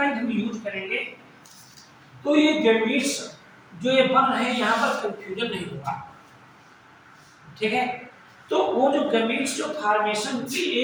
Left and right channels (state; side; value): identical; both; correlation 1.00